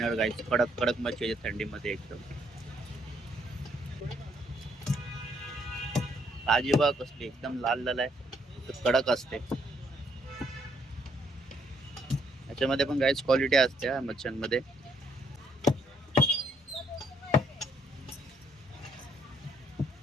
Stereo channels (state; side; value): normal; both; correlation 0.70